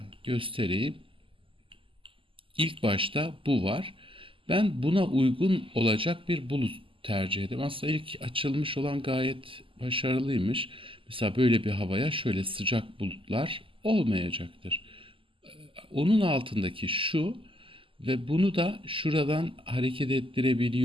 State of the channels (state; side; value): late; left; 0.25 ms